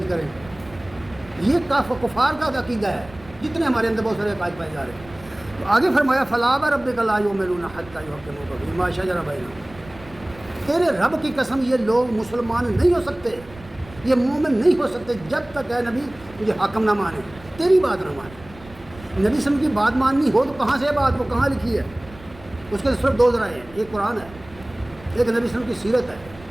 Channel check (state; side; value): noise; right; rumble, 20 dB below the sound